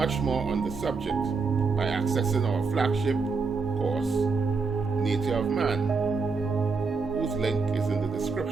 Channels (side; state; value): left; quieter; 4.6 dB